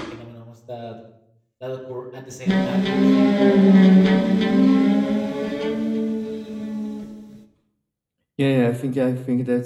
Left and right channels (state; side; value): identical; both; correlation 1.00